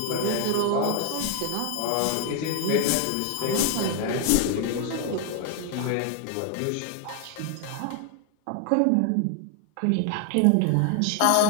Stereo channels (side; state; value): both; different; correlation 0.01